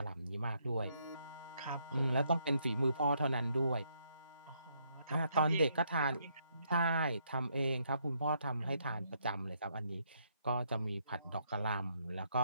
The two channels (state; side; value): inverted; both; correlation -0.73